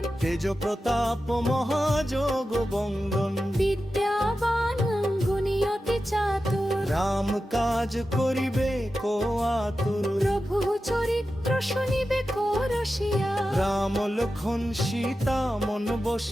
তেজ প্রতাপ মহাযোগ বন্দন বিদ্যাবান গুণী চাতুর রাম কাজ করিবে কো আতুর প্রভু চরিত্র শুনিবে কো রসিয়া রাম লক্ষণ সীতা মন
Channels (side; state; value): both; normal; correlation 0.92